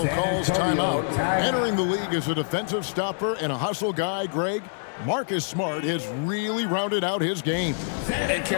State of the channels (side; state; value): right; silent; digital silence